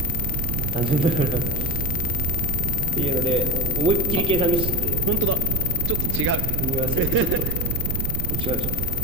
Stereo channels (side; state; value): right; noise; rumble, 1 dB below the sound